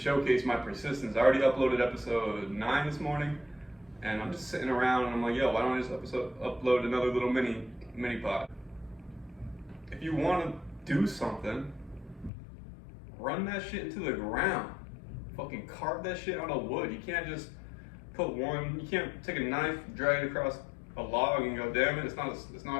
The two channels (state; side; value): drops out; right; at 12.3 s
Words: my persistence. I already uploaded episode 9 this morning, and I'm just sitting around and I'm like, yo, why don't I just upload another little mini pod? If you want to do something, run that shit into the ground. Fucking carve that shit out of wood. You can't just you can't take a knife, drag it across a log and go, damn it, it's